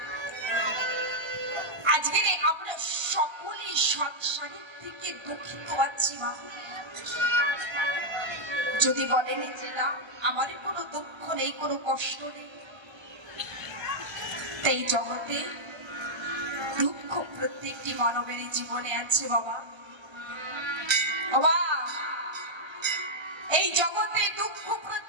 আজকে আমরা সকলেই সংসারের থেকে দুঃখিত আছি। যদি বলেন যে না, আমার কোনো দুঃখ নেই, কোনো কষ্ট নেই, তাই জগতে দুঃখ প্রত্যেকটি মানবের জীবনে আছে বাবা। এই জগতে দুঃখ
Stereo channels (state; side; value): late; left; 1.3 ms